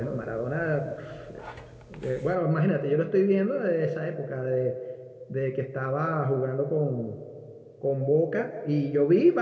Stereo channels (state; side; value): identical; both; correlation 1.00